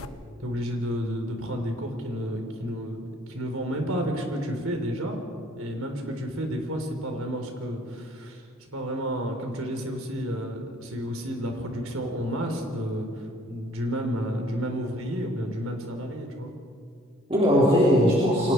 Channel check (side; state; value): both; normal; correlation 0.59